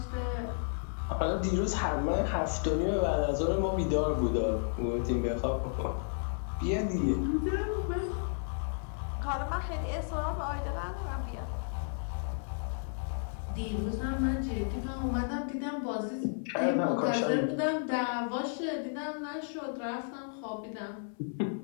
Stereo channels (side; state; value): right; silent; 56 dB below the other